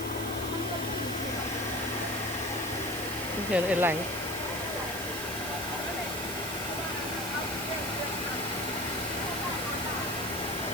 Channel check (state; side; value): noise; right; hiss, 9 dB below the sound